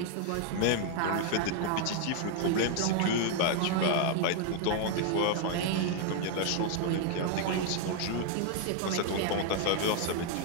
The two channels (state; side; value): different; both; correlation 0.00